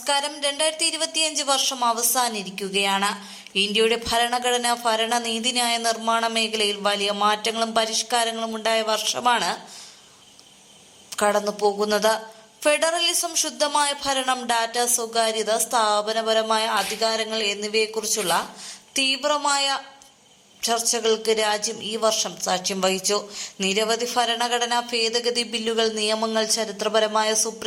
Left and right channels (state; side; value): identical; both; correlation 1.00